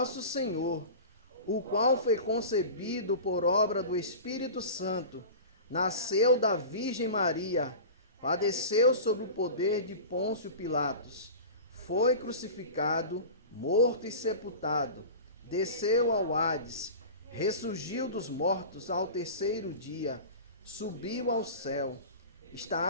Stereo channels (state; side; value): inverted; both; correlation -0.33